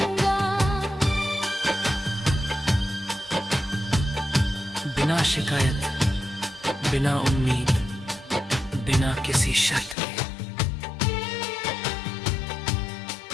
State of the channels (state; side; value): drops out; right; at 10.0 s